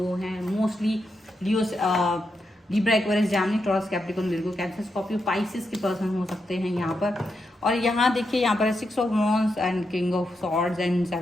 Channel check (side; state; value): both; normal; correlation 0.85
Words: हैं mostly. Leo, Libra, Aquarius, Gemini, Taurus, Capricorn, Virgo, Cancer, Scorpio, Pisces के पर्सन हो सकते हैं यहाँ पर। और यहाँ देखिए, यहाँ पर है 6 of wands and king of swords and